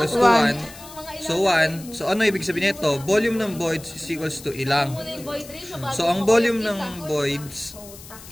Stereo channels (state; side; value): noise; left; hiss, 17 dB below the sound